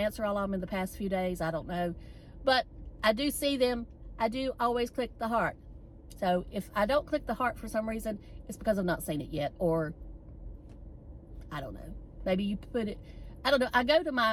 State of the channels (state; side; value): identical; both; correlation 1.00